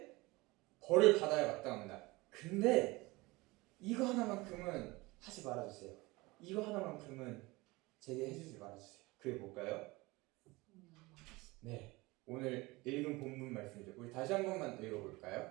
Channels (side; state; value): left; quieter; 22.5 dB